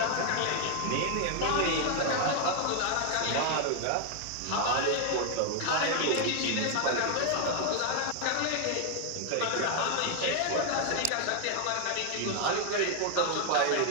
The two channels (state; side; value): different; both; correlation 0.00